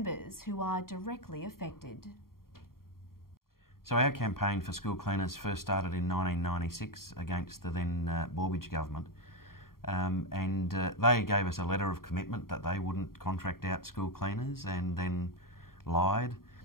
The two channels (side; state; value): right; late; 0.93 ms